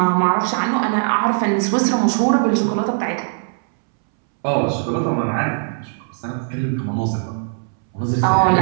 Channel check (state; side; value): silent; left; 66 dB below the other